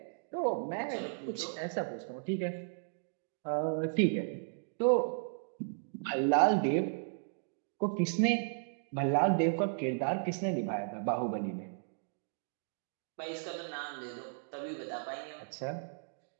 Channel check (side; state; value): left; silent; digital silence